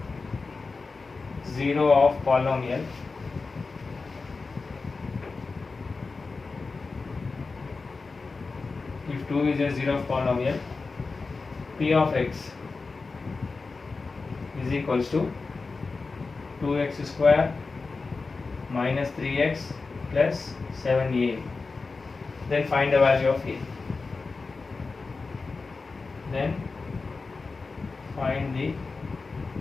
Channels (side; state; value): right; quieter; 4.1 dB